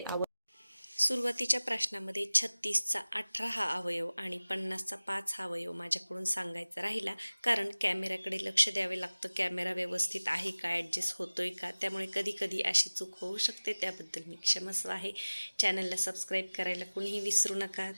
सुरुवातीच्या प्रश्नामध्ये 36चा 18 हा अवयव आणि 50चा 5 हा अवयव माझ्याकडून सांगायचा राहिला, कारण कॅमेऱ्याकडे लक्ष द्यावे लागतं. कॅमेरा व्यवस्थित आहे का, ॲडजस्ट होतोय का, त्यामुळे कधी कधी अशी चूक होऊ शकते. त्याबद्दल मी क्षमस्व आहे. चॅनलला सबस्क्राईब करायला कोणीही विसरू नका.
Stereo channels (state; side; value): inverted; both; correlation -0.99